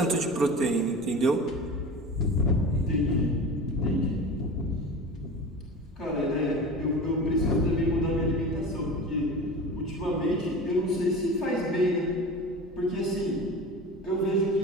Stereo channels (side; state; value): both; normal; correlation 0.33